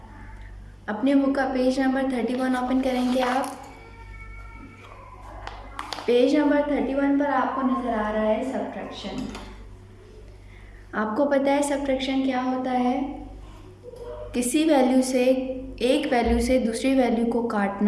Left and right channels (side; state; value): both; identical; correlation 1.00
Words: अपने बुक का पेज नंबर 31 ओपन करेंगे आप। पेज नंबर 31 पर आपको नज़र आ रहा है सब्ट्रैक्शन। आपको पता है सब्ट्रैक्शन क्या होता है? किसी वैल्यू से एक वैल्यू से दूसरी वैल्यू को